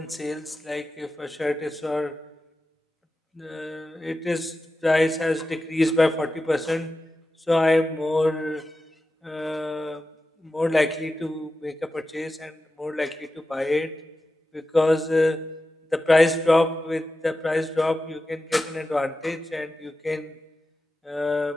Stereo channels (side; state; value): both; normal; correlation 0.92